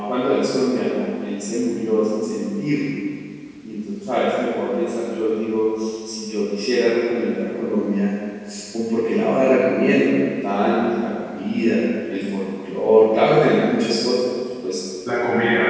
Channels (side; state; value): both; identical; correlation 1.00